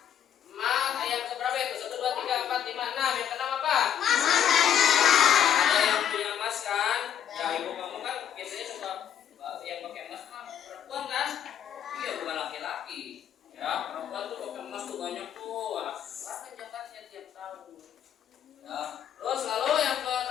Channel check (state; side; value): quieter; right; 9.6 dB